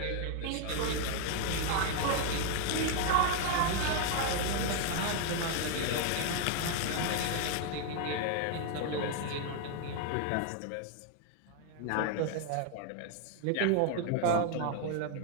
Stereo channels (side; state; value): both; different; correlation 0.00